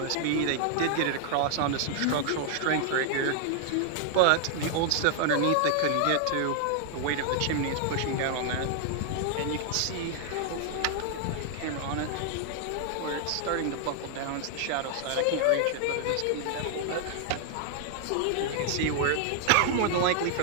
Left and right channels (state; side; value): different; both; correlation 0.00